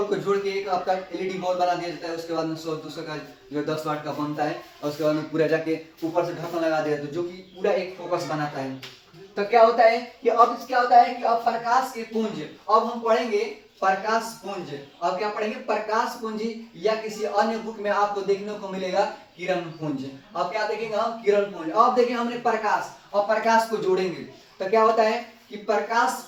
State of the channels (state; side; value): identical; both; correlation 1.00